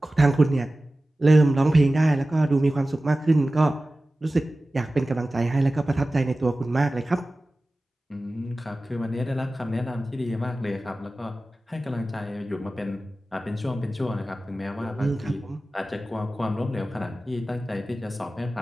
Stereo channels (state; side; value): normal; both; correlation 0.96